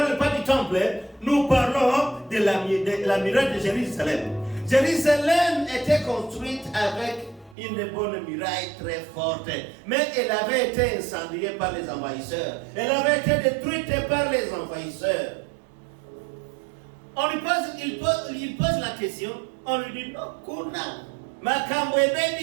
pas du temple. Nous parlons de la muraille de Jérusalem. Jérusalem était construite avec une bonne muraille très forte. Mais elle avait été incendiée par les envahisseurs. Elle avait été détruite par les envahisseurs. Il pose la question. On lui dit, non, Kuna, Makambo et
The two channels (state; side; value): drops out; left; at 7.6 s